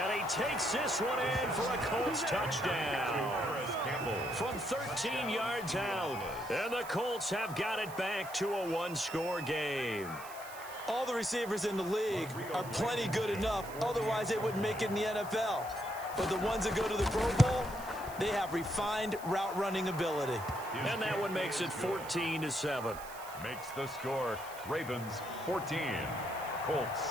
he takes this one in for a Colts touchdown. From 13 yards out. And the Colts have got it back to a 1-score game. All the receivers in the league are plenty good enough. Otherwise, they wouldn't make it in the NFL. But the ones that go to the Pro Bowl, they have refined route running ability. And that one makes it 14-7. Makes the score Ravens 14, Colts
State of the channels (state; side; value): noise; right; hiss, 16 dB below the sound